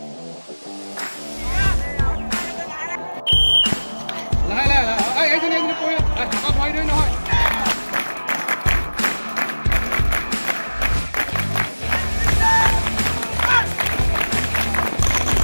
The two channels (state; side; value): inverted; both; correlation -1.00